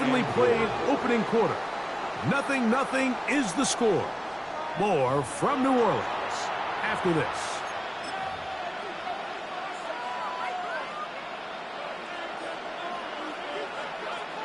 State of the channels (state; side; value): identical; both; correlation 1.00